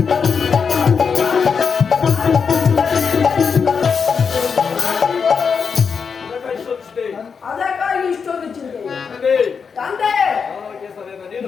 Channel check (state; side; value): quieter; right; 6.0 dB